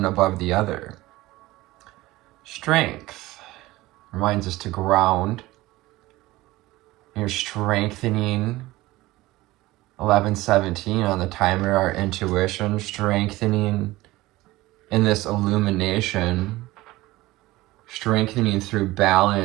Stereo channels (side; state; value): left; quieter; 18.5 dB